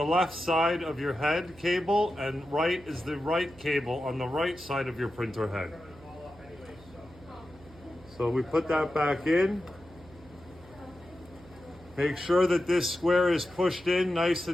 left side of your head cable, and right is the right cable on the right side of your printer head. So we put that back in. Make sure that this square is pushed in nice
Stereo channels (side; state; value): right; noise; hum, 22 dB below the sound